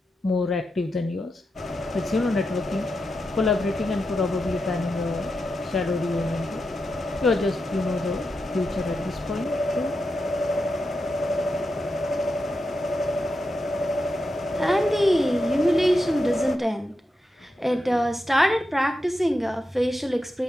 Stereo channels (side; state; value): both; normal; correlation 0.87